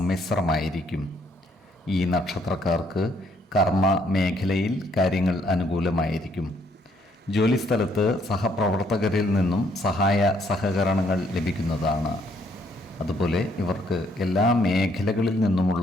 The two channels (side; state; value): both; normal; correlation 0.68